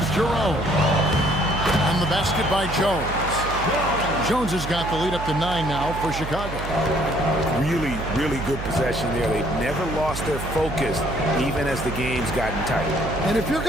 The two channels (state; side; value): noise; right; hum, 8 dB below the sound